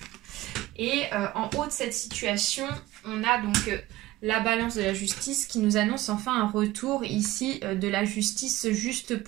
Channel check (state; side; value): quieter; left; 17.0 dB